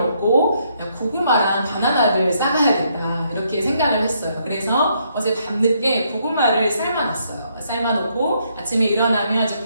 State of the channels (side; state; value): both; inverted; correlation -0.73